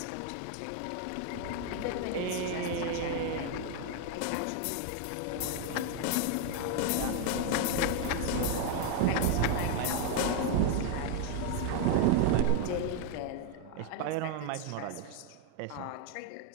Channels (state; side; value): different; both; correlation 0.01